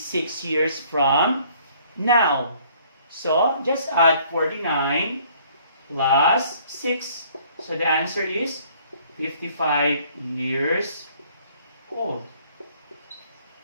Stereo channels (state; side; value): inverted; both; correlation -0.60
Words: years from now? So, just add 49 plus 6. So, the answer is 55 years old.